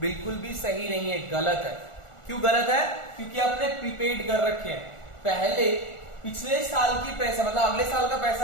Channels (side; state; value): right; late; 1.4 ms